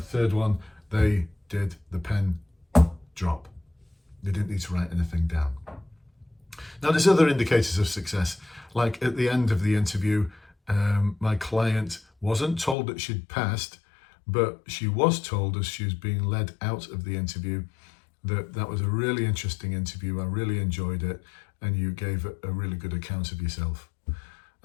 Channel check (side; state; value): right; drops out; at 12.8 s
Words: one, they did the pen drop. They didn't need to write anything down. Now, there's other indicators of success. Like at the end of the interview, my client wasn't told that she'd passed, but she was told as she was being led out of the interview that was a really interesting interview. I really enjoyed it, and you gave a really good account of yourself.